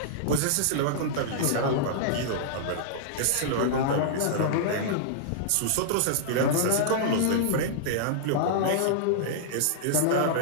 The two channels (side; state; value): both; different; correlation -0.02